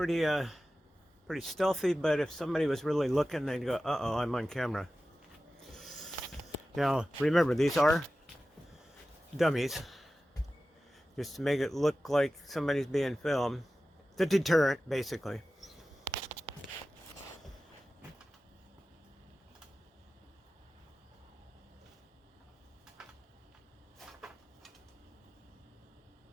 stealthy, but if somebody was really looking, they'd go, uh-oh, I'm on camera. Now, remember, these are dummies, just to make it look like somebody's being filmed. The deterrent, basically.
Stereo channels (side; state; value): both; normal; correlation 0.95